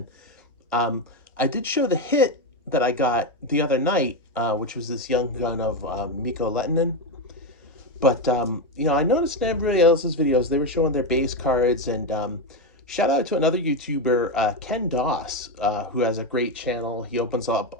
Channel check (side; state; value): both; normal; correlation 0.10